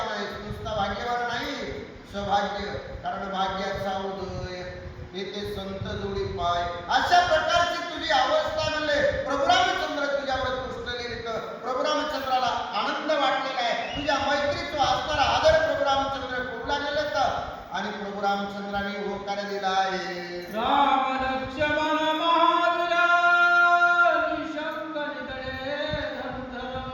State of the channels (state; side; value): identical; both; correlation 1.00